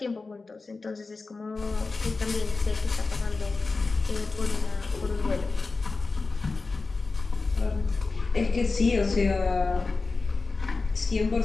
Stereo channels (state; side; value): quieter; right; 3.9 dB